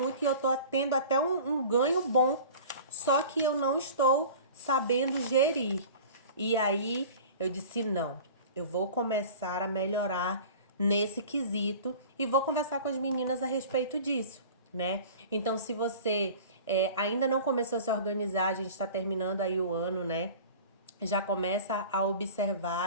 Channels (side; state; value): both; inverted; correlation -0.40